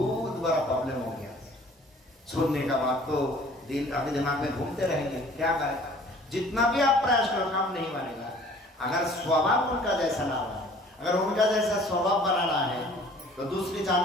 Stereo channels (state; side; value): normal; both; correlation 0.52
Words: बड़ा प्रॉब्लम हो गया। सुनने का बात तो दिल आपके दिमाग में घूमते रहेंगे, क्या करें? जितना भी आप प्रयास करो काम नहीं बनेगा। अगर स्वभाव उनका जैसा ना हो, अगर उनका जैसा स्वभाव बनाना है तो दूसरे